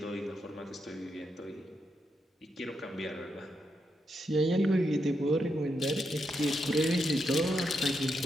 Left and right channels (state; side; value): normal; both; correlation 0.82